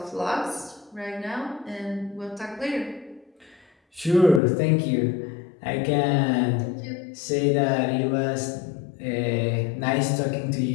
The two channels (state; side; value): drops out; right; at 4.4 s